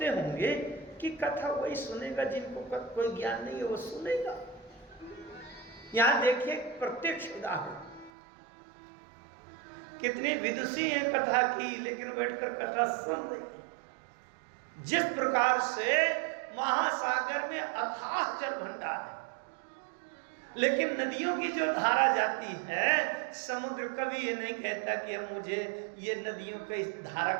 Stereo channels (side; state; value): left; drops out; at 8.1 s